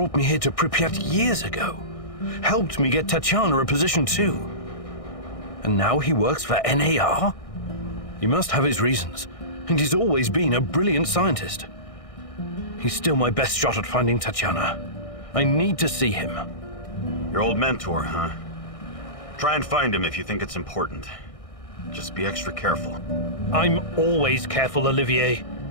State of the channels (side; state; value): right; late; 1.6 ms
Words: me here to Pripyat years ago. Helped me get Tatiana a position too. And now he works for NAR? He must have his reasons, and he's always been a brilliant scientist. He's still my best shot at finding Tatiana. I need to see him. Your old mentor, huh? Try and find him if you think it's important. Just be extra careful. I'm always careful, Olivier.